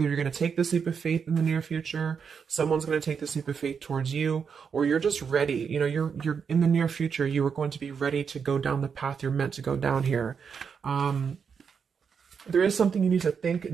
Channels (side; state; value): left; quieter; 6.4 dB